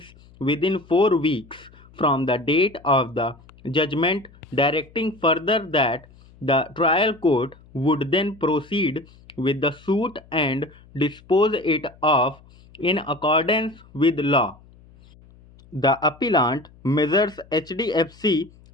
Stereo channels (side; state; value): left; noise; hum, 26 dB below the sound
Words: within 4 weeks from the date of the judgment, directing further that the trial court would then proceed with the suit and dispose it of in accordance with law. The appellant, Messrs. HDFC,